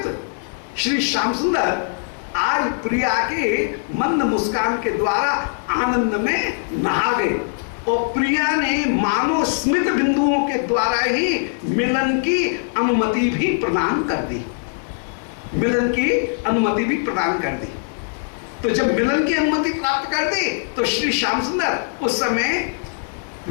श्री श्याम सुंदर आज प्रिया के मंद मुस्कान के द्वारा आनंद में नहा गए। और प्रिया ने मानो स्मित बिंदुओं के द्वारा ही मिलन की अनुमति भी प्रदान कर दी, मिलन की अनुमति भी प्रदान कर दी। तो जब मिलन की अनुमति प्राप्त कर दी तो श्री श्याम सुंदर उस समय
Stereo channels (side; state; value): right; silent; digital silence